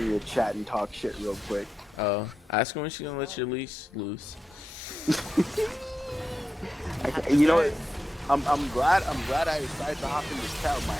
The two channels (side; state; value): both; normal; correlation 0.89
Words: your chat and talk shit real quick. Oh, ask her when she's gonna let your leash loose. You know what? I'm glad I decided to hop in this chat with my